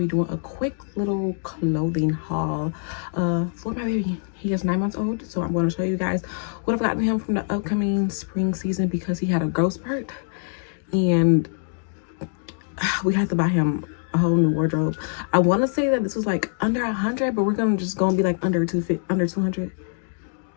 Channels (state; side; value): silent; right; digital silence